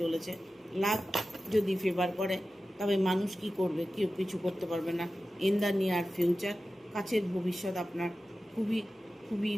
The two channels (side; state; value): both; normal; correlation 0.94